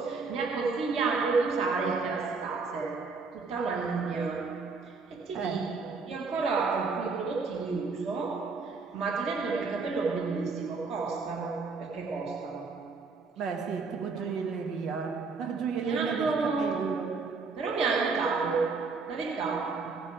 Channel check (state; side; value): quieter; left; 4.4 dB